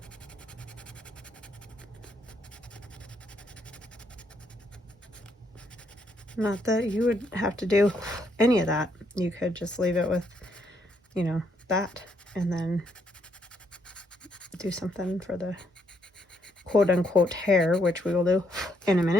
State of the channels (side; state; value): both; normal; correlation 0.73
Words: Not that you would have to do any of that. You could just leave it with, you know, that, and then do something for the quote-unquote hair, which we will do in a